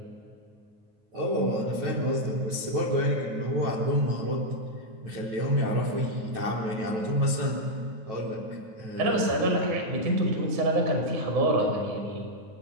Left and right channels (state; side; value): late; left; 9.3 ms